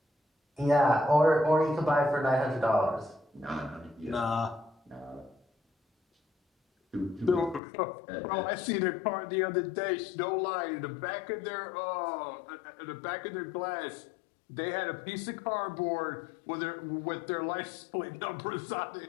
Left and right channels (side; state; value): right; drops out; at 7.6 s